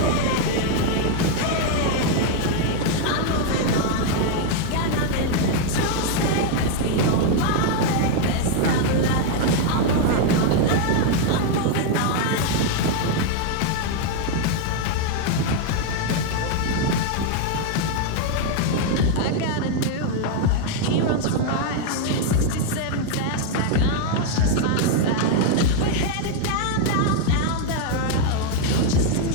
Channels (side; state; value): both; different; correlation 0.01